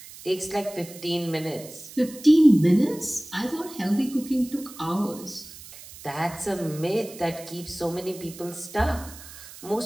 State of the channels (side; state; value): right; noise; hiss, 17 dB below the sound